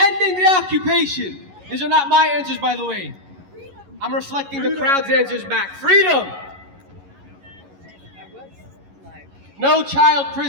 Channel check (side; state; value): left; late; 11 ms